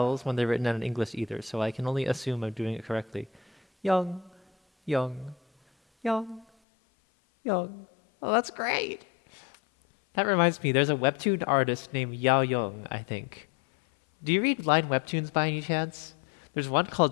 when they're written in English either, so I can only assume I'm doing it correctly. Yong. Yong. Yong. Yong. Oh, that's great. That reminds me, there's a webtoon artist named Yao Young, I think. Do you read line webtoons by any chance? There's one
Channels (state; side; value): drops out; right; at 6.5 s